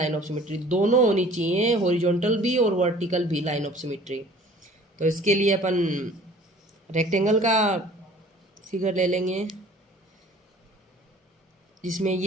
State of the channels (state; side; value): normal; both; correlation 0.50